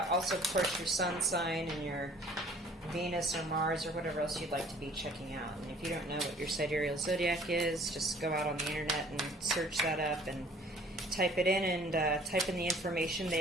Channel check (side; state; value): both; normal; correlation 0.54